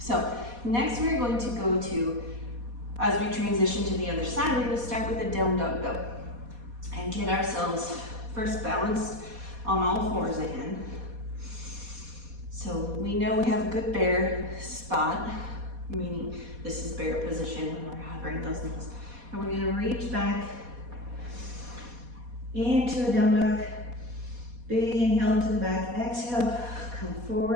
next we're going to go to, as we transition to the other side, we're going to start with a down dog go and get ourselves first balanced on all 4s again. So we know we have a good bear spot, meaning this is bear position when we're hovering those knees. And we're going to reach back into a down dog. Big inhale into the back, exhale, come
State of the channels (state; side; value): late; left; 4.2 ms